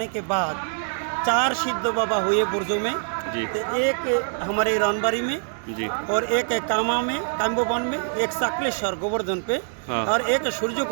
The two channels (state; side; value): silent; left; digital silence